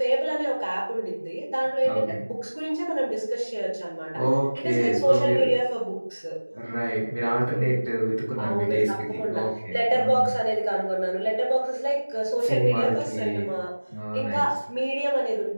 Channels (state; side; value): inverted; both; correlation -1.00